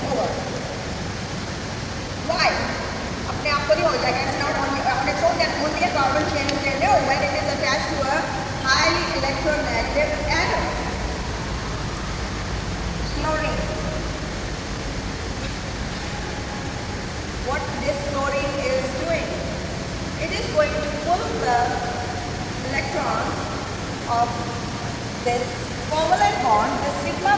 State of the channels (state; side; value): identical; both; correlation 1.00